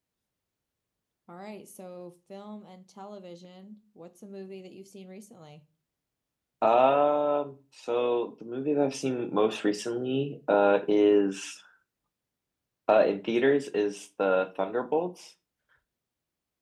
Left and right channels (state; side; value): identical; both; correlation 1.00